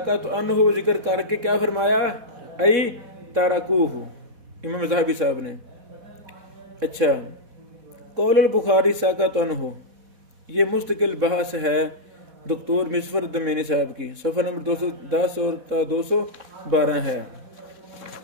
عنہ ذکر کر کے کیا فرمایا؟ ای تاراکوہ، امام ذہبی صاحب نے۔ اچھا، قول البخاری ساکات عنہ یہ مستقل بحث ہے دکتور مصفر الدمینی صاحب کی، صفحہ نمبر 210 اور 212 ہے۔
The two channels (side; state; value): left; late; 4.1 ms